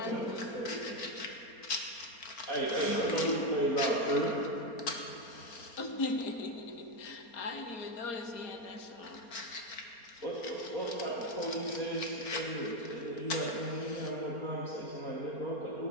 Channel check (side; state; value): right; late; 4.3 ms